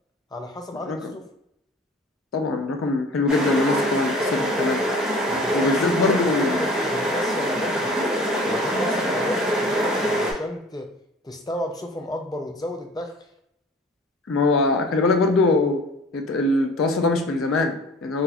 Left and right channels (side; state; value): both; normal; correlation 0.45